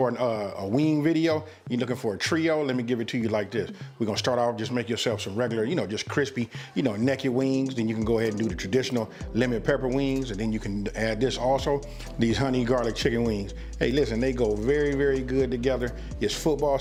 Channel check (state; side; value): identical; both; correlation 1.00